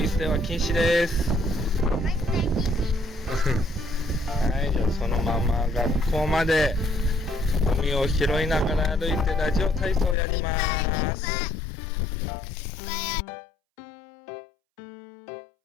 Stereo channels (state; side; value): drops out; right; at 10.2 s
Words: 捨ては禁止です。はい、じゃあそのまま学校までゴミを拾いながら歩いてラジオ体操をやります。